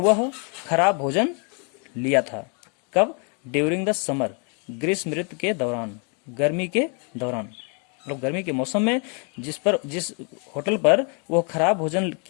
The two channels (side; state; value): right; quieter; 37.5 dB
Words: खराब भोजन लिया था। कब? ड्यूरिंग द समर, ग्रीष्म ऋतु के दौरान, गर्मी के दौरान, मतलब गर्मी के मौसम में जिस होटल पर वो खराब भोजन